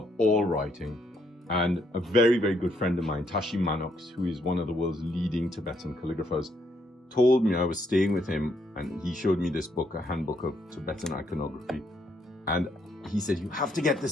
all writing. And a very, very good friend of mine, Tashi Manox, who is one of the world's leading Tibetan calligraphers, told me, I was staying with him, and he showed me this book, a handbook of Tibetan iconography. And he said, "You have to get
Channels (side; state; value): both; normal; correlation 0.73